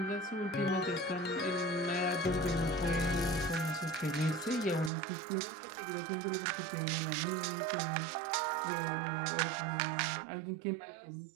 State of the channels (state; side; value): drops out; left; at 4.9 s